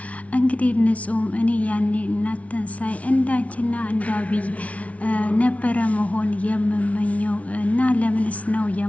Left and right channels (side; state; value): right; late; 0.066 ms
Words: እንግዲህ ንጹህም እኔ ያኔ እናንተን ሳይ እንዳንቺና እንዳብይ ነበረ መሆን የምመኘው እና ለምንስ ነው